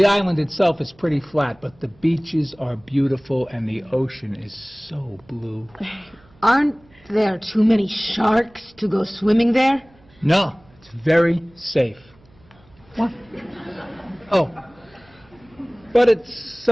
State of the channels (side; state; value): right; noise; hum, 29 dB below the sound